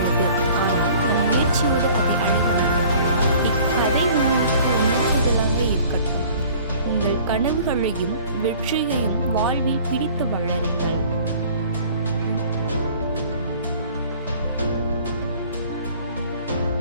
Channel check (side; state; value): both; inverted; correlation -0.50